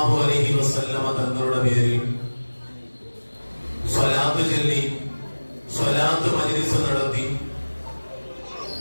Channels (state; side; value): inverted; both; correlation -1.00